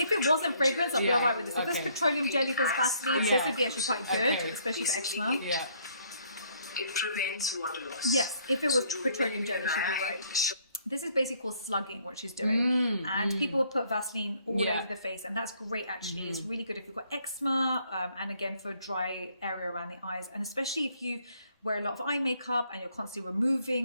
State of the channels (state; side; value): inverted; both; correlation -0.65